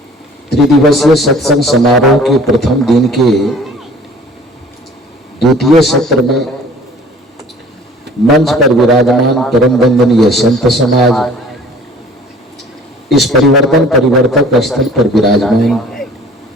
त्रिदिवसीय सत्संग समारोह के प्रथम दिन के द्वितीय सत्र में मंच पर विराजमान परम वंदनीय संत समाज, इस परिवर्तक स्थल पर विराजमान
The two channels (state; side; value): normal; both; correlation 0.50